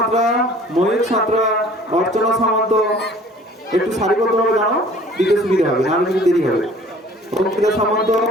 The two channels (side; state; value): both; normal; correlation 0.51